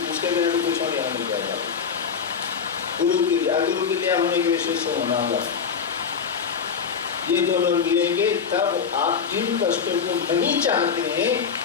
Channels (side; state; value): right; quieter; 6.5 dB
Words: उसके बिना तो कुछ होने नहीं जाएगा। गुरु की दिया होने के विशेष से होना होगा, ये दोनों मिलेंगे तब आप जिन कष्टों को नहीं चाहते हैं